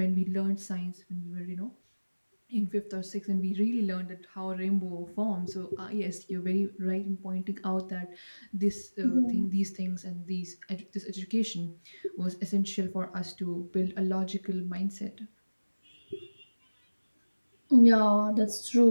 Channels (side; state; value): both; inverted; correlation -1.00